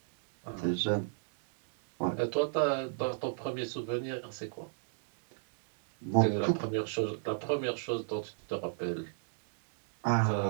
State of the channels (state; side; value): silent; left; digital silence